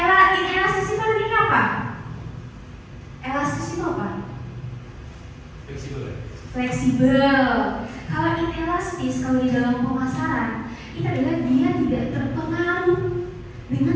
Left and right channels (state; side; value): identical; both; correlation 1.00